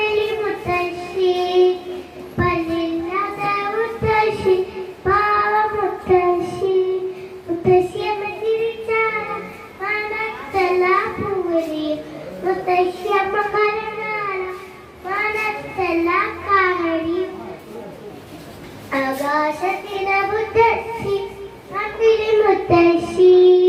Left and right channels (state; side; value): identical; both; correlation 1.00